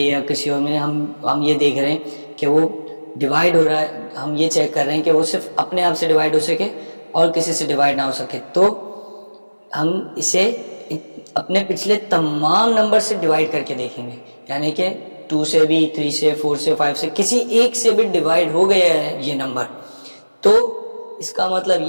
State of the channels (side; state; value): both; inverted; correlation -1.00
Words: किसी और में हम ये देख रहे हैं कि वो डिवाइड हो रहा है। हम ये चेक कर रहे हैं कि वो सिर्फ अपने आप से डिवाइड हो सके और किसी से डिवाइड ना हो सके। तो हम इसे अपने पिछले तमाम नंबर से डिवाइड करके देखेंगे, यानी कि 2 से भी, 3 से, 4 से, 5 से, किसी एक से भी डिवाइड हो गया है ये नंबर, तो इसका मतलब